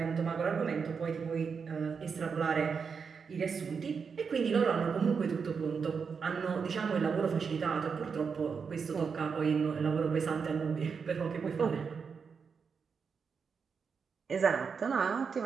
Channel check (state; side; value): quieter; left; 5.8 dB